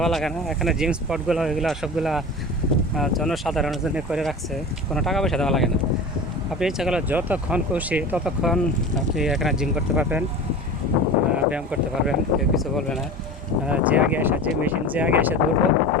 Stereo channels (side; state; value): both; normal; correlation 0.33